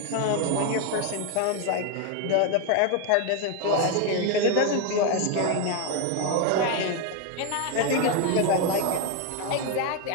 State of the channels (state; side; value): different; both; correlation 0.02